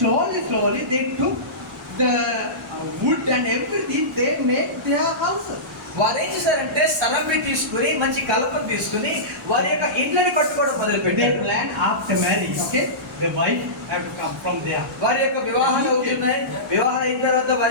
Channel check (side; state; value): both; normal; correlation -0.20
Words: they took the wood and everything. They made their houses. వారు ఏం చేశారంటే స్థలంపై తీసుకుని మంచి కలపను తీసుకుని వారి యొక్క ఇండ్లని కట్టుకోవడం మొదలు They పెట్టారు. plan after marriage. Okay, the wife have to come from there. వారి యొక్క వివాహాలు అవుతున్నాయి. వివాహాలు అయిన తర్వాత